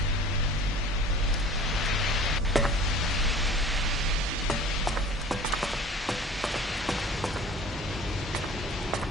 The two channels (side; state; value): both; normal; correlation 0.44